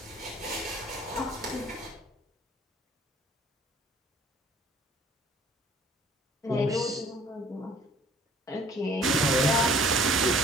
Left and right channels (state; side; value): normal; both; correlation 0.54